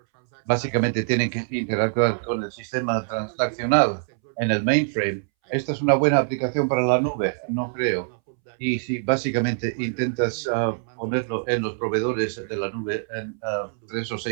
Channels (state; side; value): silent; left; 62 dB below the other